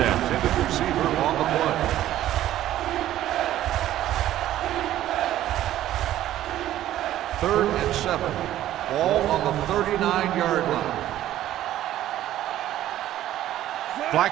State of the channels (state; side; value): quieter; left; 13.2 dB